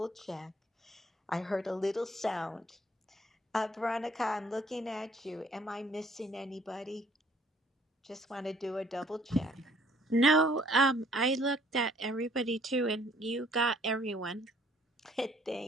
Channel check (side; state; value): both; normal; correlation 0.61